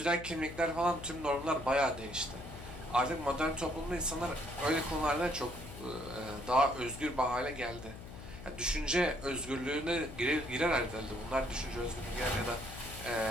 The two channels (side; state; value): left; noise; hum, 13 dB below the sound